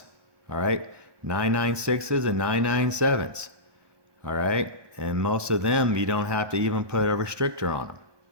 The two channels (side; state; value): left; late; 1.2 ms